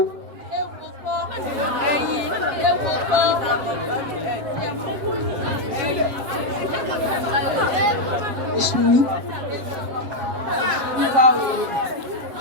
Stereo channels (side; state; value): left; late; 7.4 ms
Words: Ewo kọ́ ẹyin, ewo kọ́. Ìṣúní. Wíwá o.